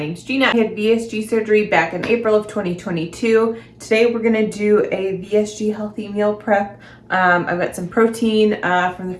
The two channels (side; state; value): both; identical; correlation 1.00